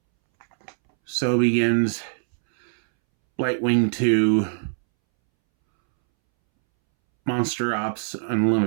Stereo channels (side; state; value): left; silent; 64 dB below the other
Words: So begins Blight-Wing 2 Monster Ops